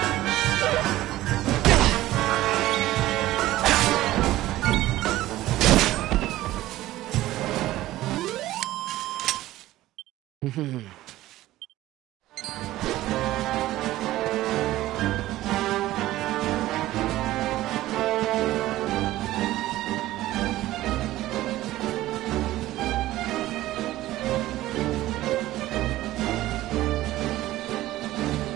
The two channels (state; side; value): quieter; left; 15.8 dB